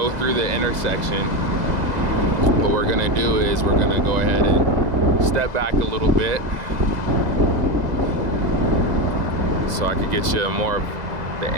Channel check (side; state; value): left; late; 2.0 ms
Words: through the intersection. What we're gonna do is we're gonna go ahead and step back a little bit so I could get you more of the